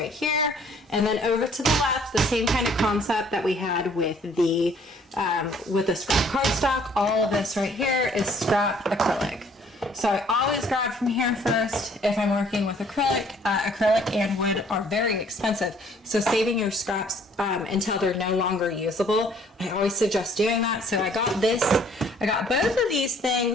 here. And then over to the left, the same kind of concept that we had with the scrap cardstock. All of this right here is scrap acrylic. So I always grab from here first if I'm working with acrylic. Acrylic and wood are very expensive. So saving your scraps until they're no longer usable, I always suggest doing that. So I got this, I got both of these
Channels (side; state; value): both; normal; correlation 0.59